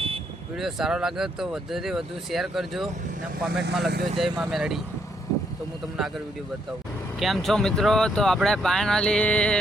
સારો લાગે તો વધુથી વધુ શેર કરજો અને કોમેન્ટમાં લખજો જય મા મેલડી. તો હું તમને આગળ વિડીયો બતાવું. કેમ છો મિત્રો? તો આપણે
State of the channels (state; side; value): normal; both; correlation 0.74